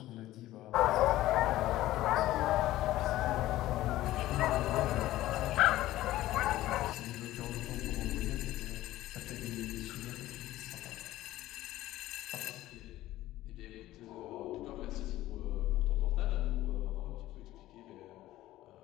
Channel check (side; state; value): right; quieter; 15.5 dB